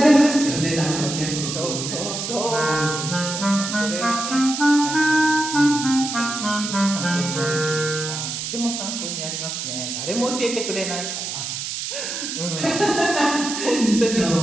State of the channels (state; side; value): noise; right; hiss, 5 dB below the sound